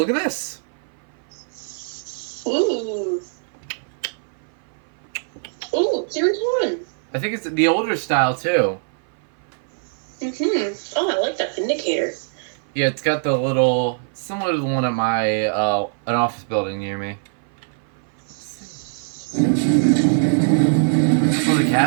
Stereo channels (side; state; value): left; silent; 58 dB below the other